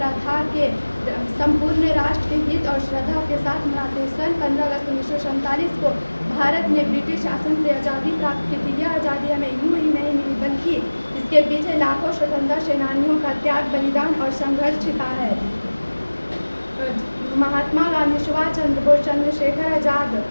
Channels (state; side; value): inverted; both; correlation -1.00